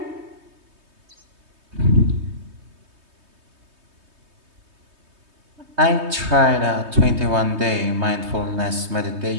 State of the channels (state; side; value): late; left; 3.2 ms